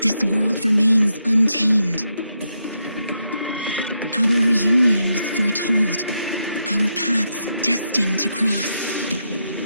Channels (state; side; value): inverted; both; correlation -0.82